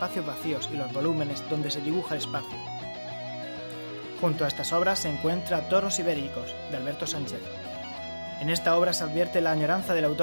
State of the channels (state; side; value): inverted; both; correlation -1.00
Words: vacíos y los volúmenes donde se dibuja el espacio. Junto a estas obras se encuentra Toros Ibéricos, de Alberto Sánchez. En esta obra se advierte la añoranza del